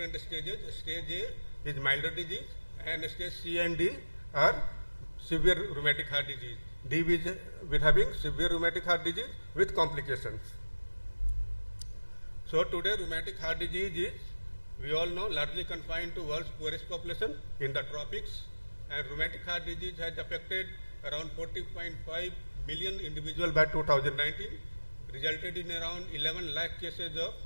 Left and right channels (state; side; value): inverted; both; correlation -1.00